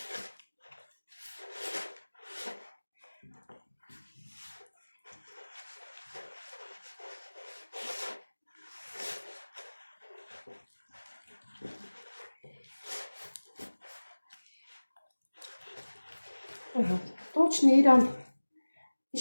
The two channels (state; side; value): inverted; both; correlation -1.00